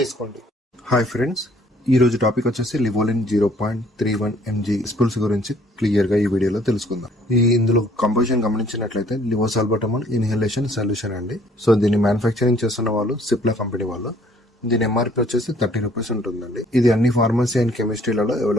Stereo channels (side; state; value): both; normal; correlation 0.60